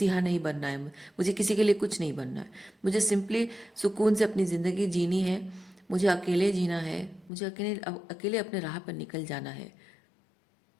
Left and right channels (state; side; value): drops out; right; at 7.3 s